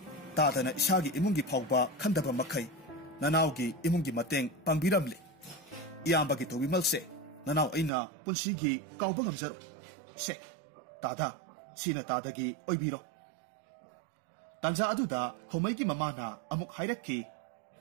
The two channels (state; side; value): drops out; left; at 7.9 s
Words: tadana isagi imungi phawba khandaba makhai nanawgi imungi mateng pangbiramli iyambagi tobimalse nanaw aina punsigi kawba ngamjaro se tada sina tadagi oibiro tanja aduda khomaigi mamana amuk hairakki